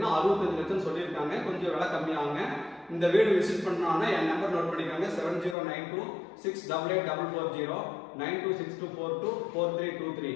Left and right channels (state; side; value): drops out; right; at 5.6 s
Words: 65 லட்சம் சொல்லியிருக்காங்க. கொஞ்சம் விலை கம்மியாகுங்க. இந்த வீடு விசிட் பண்ணாங்கன்னா என் நம்பர் நோட் பண்ணிக்கோங்க. 7092688440 9262424323.